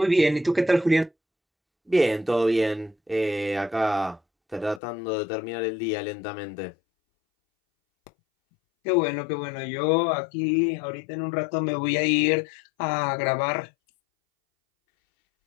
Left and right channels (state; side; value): drops out; right; at 4.8 s